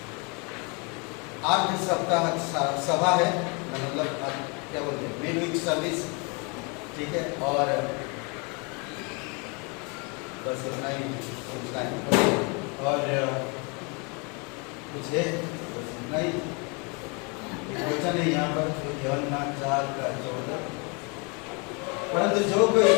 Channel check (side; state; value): right; quieter; 32.2 dB